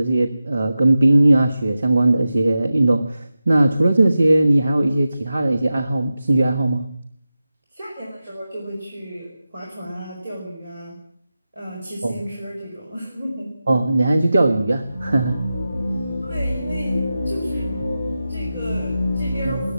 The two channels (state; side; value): inverted; both; correlation -0.93